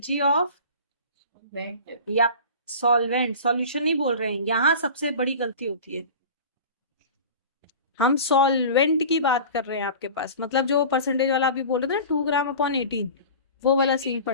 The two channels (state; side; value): inverted; both; correlation -0.37